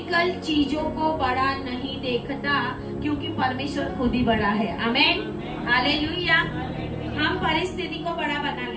चीजों को बड़ा नहीं देखता, क्योंकि परमेश्वर खुद ही बड़ा है। आमेन, हालेलुया। हम परिस्थिति को बड़ा बना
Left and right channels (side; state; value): both; identical; correlation 1.00